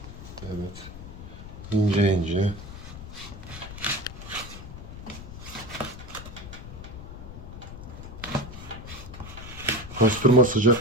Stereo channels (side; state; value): left; noise; rumble, 12 dB below the sound